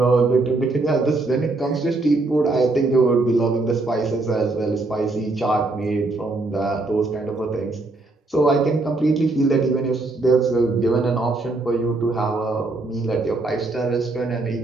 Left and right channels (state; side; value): quieter; left; 3.2 dB